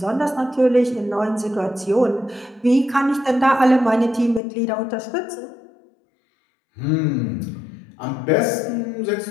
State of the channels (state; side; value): drops out; right; at 4.4 s